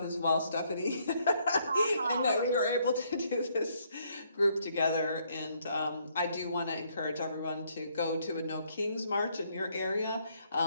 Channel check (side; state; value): both; inverted; correlation -0.70